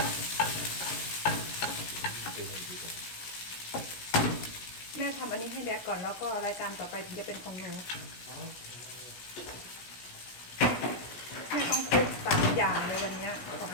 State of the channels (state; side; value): late; right; 17 ms